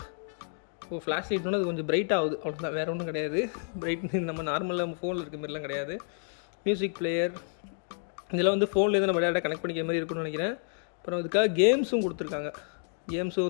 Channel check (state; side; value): silent; right; 58 dB below the other